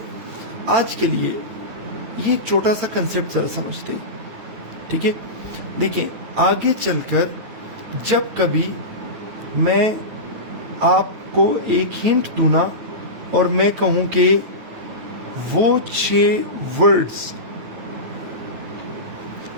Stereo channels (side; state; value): left; late; 9.4 ms